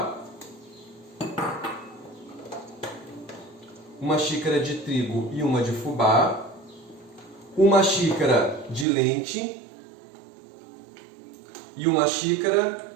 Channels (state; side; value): drops out; left; at 8.8 s